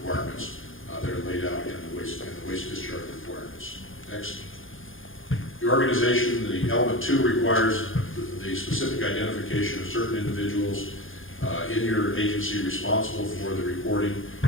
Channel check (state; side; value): late; right; 0.59 ms